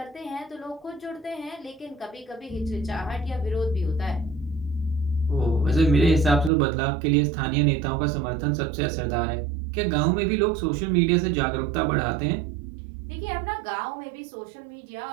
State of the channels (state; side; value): drops out; left; at 6.5 s